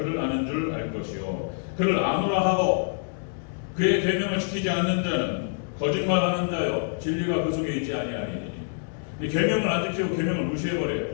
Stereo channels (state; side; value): silent; right; 61 dB below the other